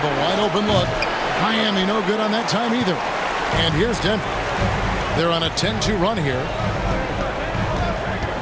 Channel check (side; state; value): both; identical; correlation 1.00